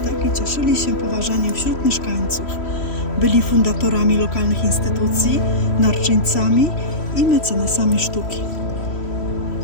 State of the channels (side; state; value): right; late; 3.1 ms